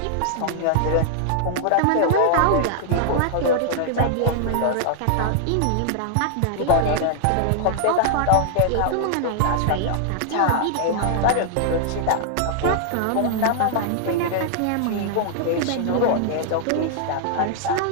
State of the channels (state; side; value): different; both; correlation -0.01